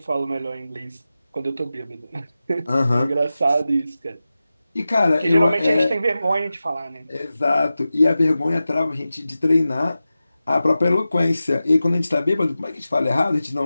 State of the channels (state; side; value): inverted; both; correlation -0.94